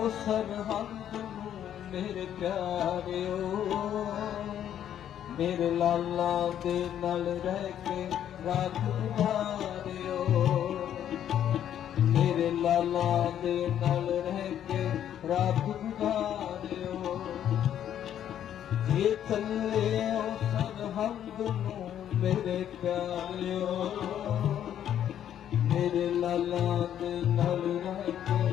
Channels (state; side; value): quieter; right; 10.3 dB